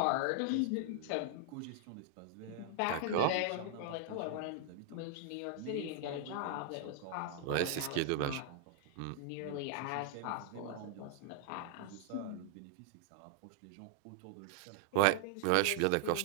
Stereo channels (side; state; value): both; different; correlation -0.01